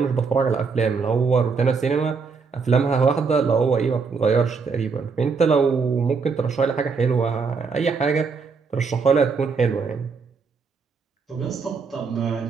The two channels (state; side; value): quieter; left; 5.1 dB